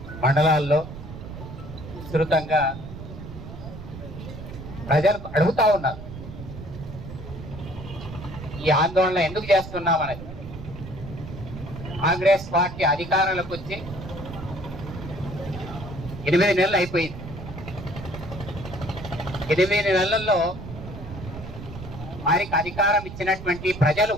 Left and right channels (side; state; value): right; noise; rumble, 11 dB below the sound